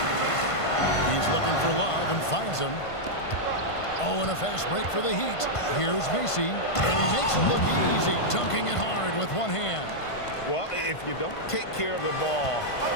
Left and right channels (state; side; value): late; right; 1.5 ms